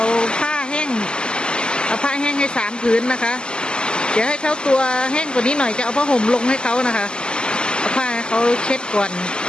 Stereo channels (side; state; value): right; late; 0.048 ms